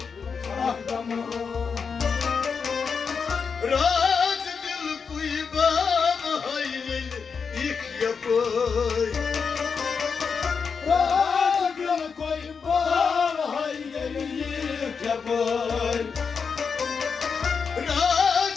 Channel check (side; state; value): right; quieter; 5.7 dB